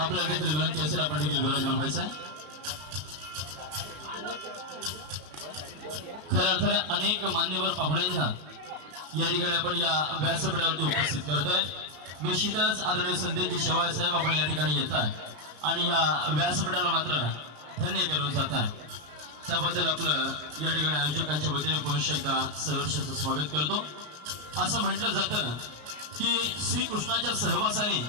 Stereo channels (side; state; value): left; late; 33 ms